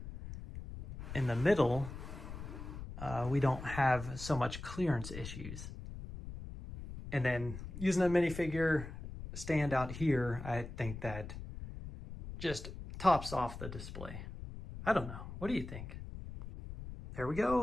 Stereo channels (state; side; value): noise; left; rumble, 10 dB below the sound